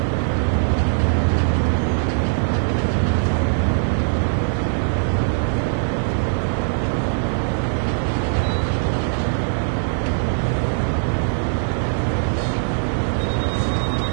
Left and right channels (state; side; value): silent; left; 62 dB below the other